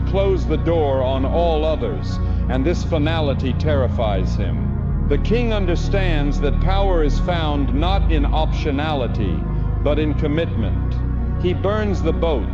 the door on all others, and this finality terrifies him. The king understands that power is found not in optionality, but in commitment. He burns the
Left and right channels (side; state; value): both; identical; correlation 1.00